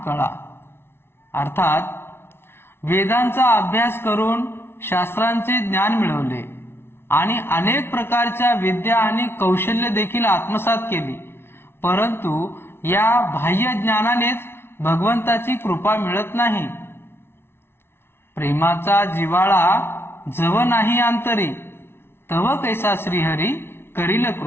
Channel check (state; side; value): late; right; 0.12 ms